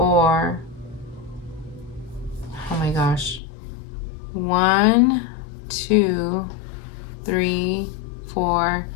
Oh my gosh. 1, 2, 3, 4,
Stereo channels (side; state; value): right; drops out; at 3.4 s